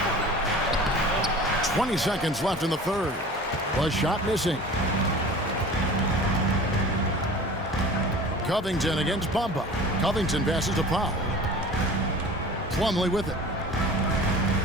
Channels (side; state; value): both; normal; correlation 0.40